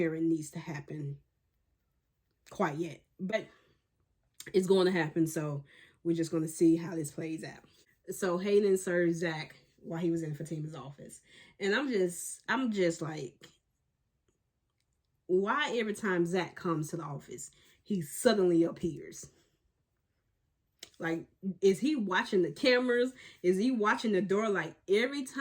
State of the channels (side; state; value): both; identical; correlation 1.00